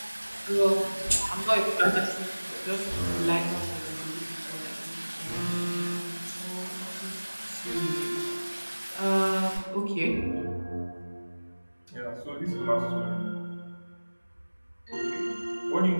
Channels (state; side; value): inverted; both; correlation -1.00